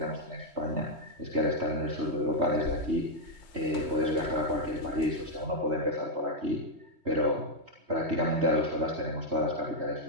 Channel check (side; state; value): left; late; 3.2 ms